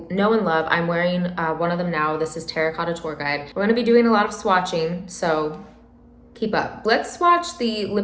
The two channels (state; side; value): identical; both; correlation 1.00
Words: know and love. I'm wearing one of them now. This is Terracotta Tour Guide. We're going to be doing a lot of swatching, so keep up. Let's swatch the